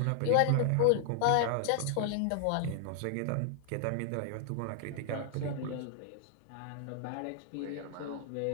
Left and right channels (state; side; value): different; both; correlation -0.01